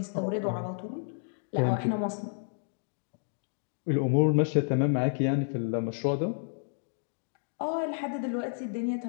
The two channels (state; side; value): silent; right; digital silence